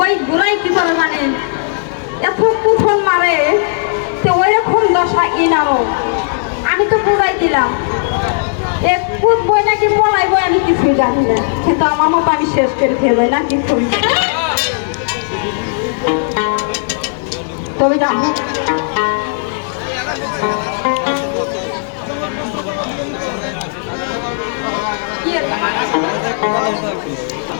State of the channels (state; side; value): silent; right; digital silence